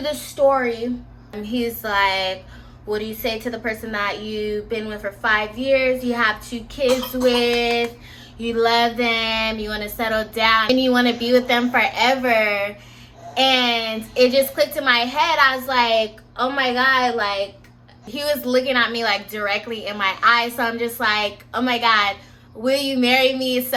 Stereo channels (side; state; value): both; identical; correlation 1.00